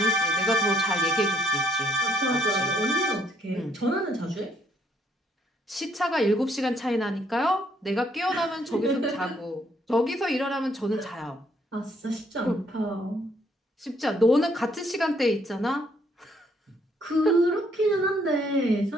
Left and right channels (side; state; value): both; normal; correlation 0.68